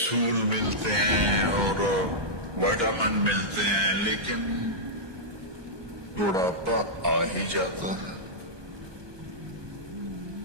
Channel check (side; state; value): left; late; 1.2 ms